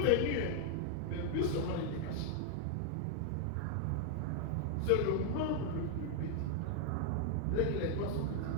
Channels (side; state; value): both; different; correlation 0.00